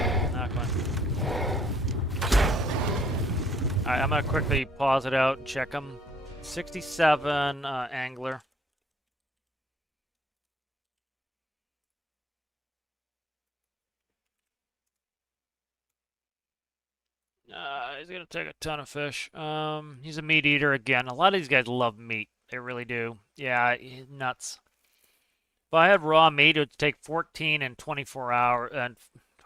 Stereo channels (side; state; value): both; normal; correlation 0.83